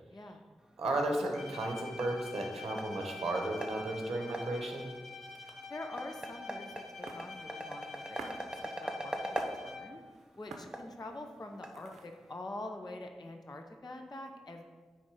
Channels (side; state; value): both; normal; correlation 0.82